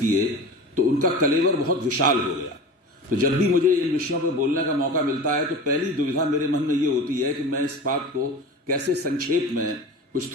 किए तो उनका कलेवर बहुत विशाल हो गया। तो जब भी मुझे इन विषयों पर बोलने का मौका मिलता है तो पहली दुविधा मेरे मन में ये होती है कि मैं इस बात को कैसे संक्षेप में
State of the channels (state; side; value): normal; both; correlation 0.33